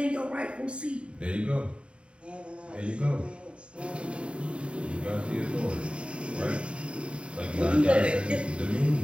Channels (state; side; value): late; left; 0.057 ms